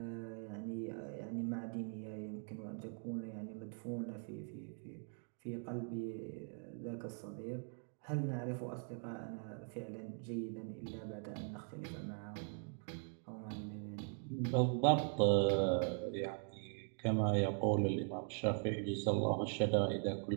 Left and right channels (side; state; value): left; silent; 50 dB below the other